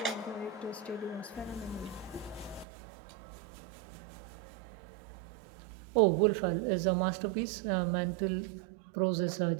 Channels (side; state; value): left; drops out; at 2.7 s